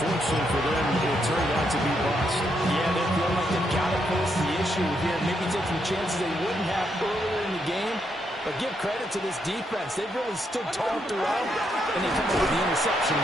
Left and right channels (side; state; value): both; normal; correlation 0.78